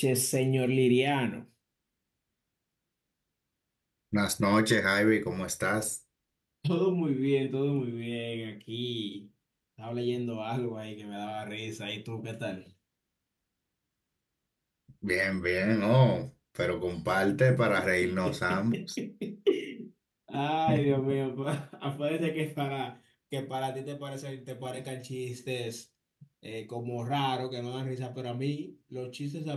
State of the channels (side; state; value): both; identical; correlation 1.00